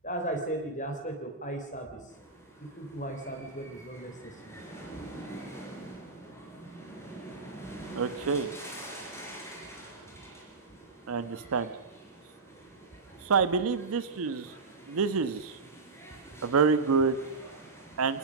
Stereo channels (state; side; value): quieter; left; 4.3 dB